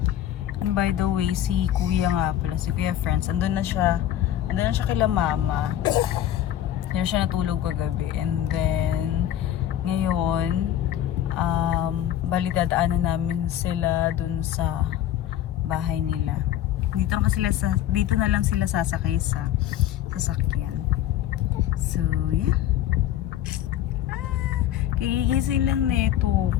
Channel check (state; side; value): quieter; right; 11.9 dB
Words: And by the way, si Kuya nga pala, si Kuya Friends, andun na siya kila mama. Yan siya natulog kagabi. And then, ngayon, bali dadaanan namin sila dun sa bahay nila. Dito na lang sila sasakay sa sasakyan. So, yeah. Kagigising lang neto.